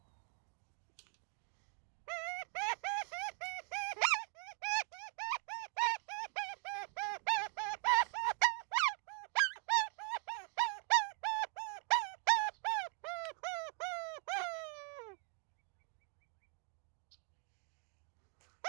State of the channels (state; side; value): quieter; left; 40.0 dB